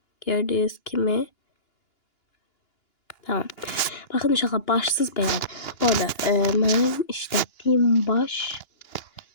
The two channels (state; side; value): late; right; 2.9 ms